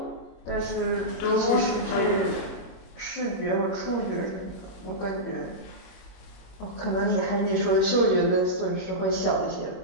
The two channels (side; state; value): right; late; 21 ms